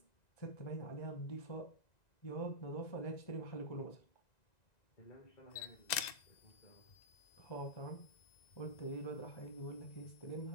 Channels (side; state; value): right; late; 1.9 ms